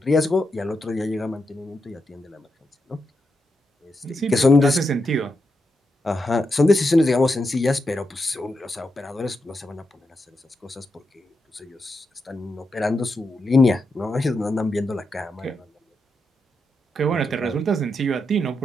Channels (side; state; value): both; normal; correlation 0.85